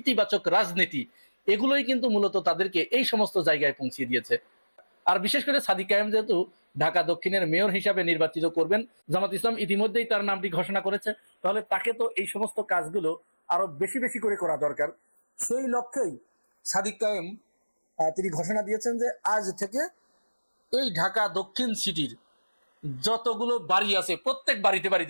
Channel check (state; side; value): inverted; both; correlation -1.00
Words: রাজনীতি, এগুলোই কিন্তু মূলত তাদেরকে এই সমস্ত জায়গায় পৌঁছিয়ে দিয়েছে। আর বিশেষ করে সাদিক কায়েম যেহেতু ঢাকা দক্ষিণের মেয়র হিসাবে নির্বাচিত করবেন, জামাত ইসলাম ইতিমধ্যেই তার নামটি ঘোষণা করেছে, তাহলে তাকে তো এই সমস্ত কাজগুলো আরো বেশি বেশি করে করা দরকার। সেই লক্ষ্যেই সাদিক কায়েম তিনি ঘোষণা দিয়েছেন যে আজ থেকে এই ঢাকা দক্ষিণ সিটির যতগুলো বাড়ি আছে প্রত্যেক বাড়িতে